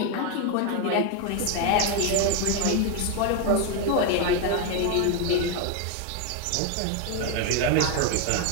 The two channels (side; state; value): both; different; correlation 0.01